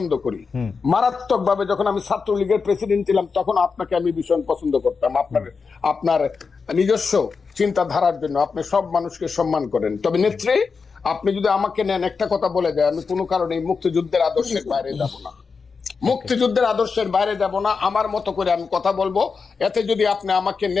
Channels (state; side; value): quieter; right; 5.1 dB